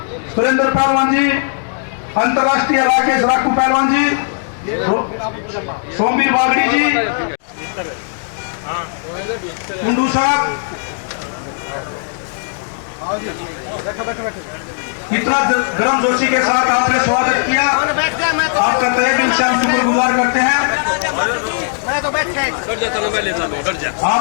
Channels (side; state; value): right; silent; digital silence